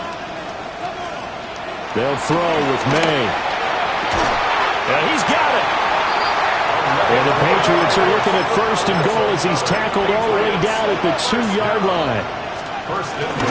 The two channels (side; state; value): both; identical; correlation 1.00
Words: They'll throw with May. And he's got it. And the Patriots are looking at 1st and goal as he's tackled all the way down at the 2-yard line. 1st and